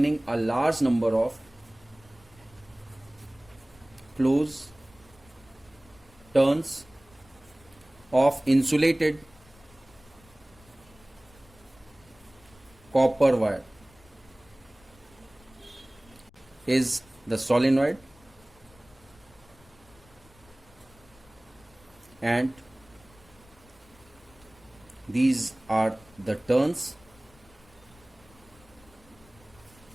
a large number of closed turns of insulated copper wire is the solenoid, and these are the turns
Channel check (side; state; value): left; noise; rumble, 26 dB below the sound